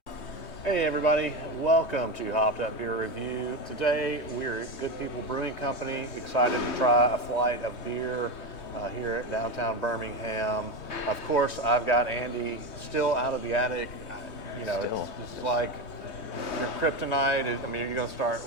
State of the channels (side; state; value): right; late; 3.2 ms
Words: Hey everybody, welcome to Hopped Up Beer Review. Today we're at Good People Brewing Company, excited to try a flight of beer here at downtown Birmingham. Of course, I've got Andy still out of the attic. You know, it's like your kryptonite. I mean, are you going to start